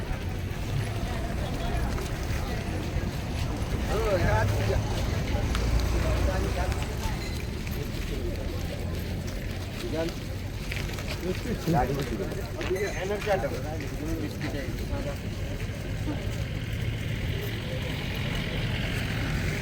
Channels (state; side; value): identical; both; correlation 1.00